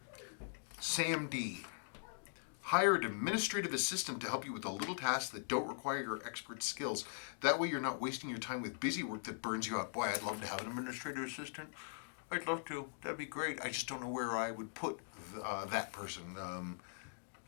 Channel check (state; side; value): silent; right; digital silence